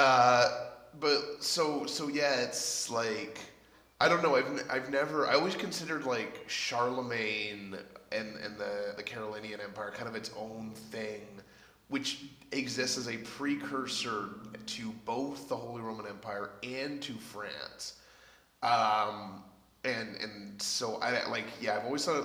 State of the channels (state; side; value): identical; both; correlation 1.00